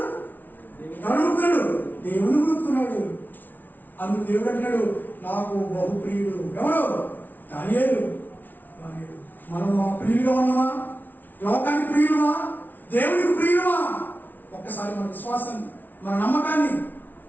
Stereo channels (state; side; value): late; right; 0.085 ms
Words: ఎవరిని మొక్కుతున్నాడు? దేవుని మొక్కుతున్నాడు. అందుకు దేవుడు అంటున్నాడు, నాకు బహుప్రియుడు ఎవరు? దానియేలు. మనం మా ప్రియులుగా ఉన్నామా? లోకానికి ప్రియులుమా? దేవునికి ప్రియులుమా? ఒక్కసారి మన విశ్వాసాన్ని, మన